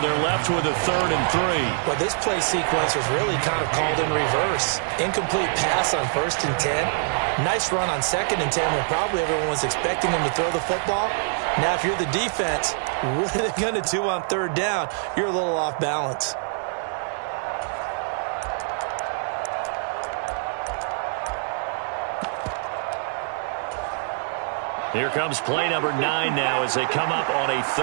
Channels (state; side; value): silent; left; digital silence